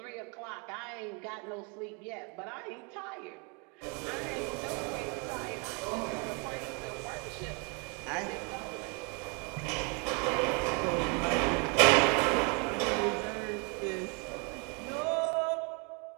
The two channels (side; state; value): left; quieter; 33.8 dB